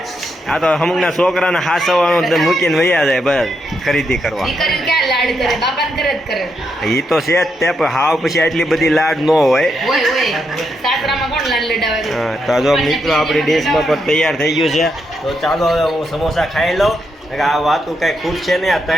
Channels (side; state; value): both; normal; correlation 0.81